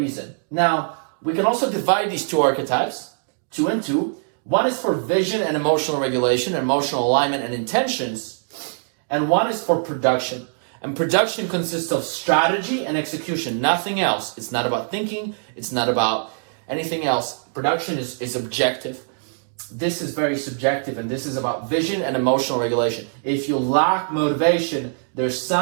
Now, we can also divide these 2 archetypes, 2 and 2. One is for vision and emotional regulation, emotional alignment and intentions. And one is for production. And production consists of strategy and execution, nothing else. It's not about thinking. It's not about anything else. Production is objective. This is very subjective, and this is about vision and emotional regulation. If you lack motivation, there's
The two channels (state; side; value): silent; left; digital silence